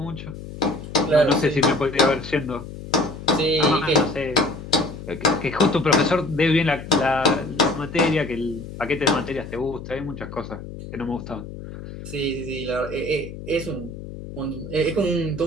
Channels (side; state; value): left; noise; hum, 12 dB below the sound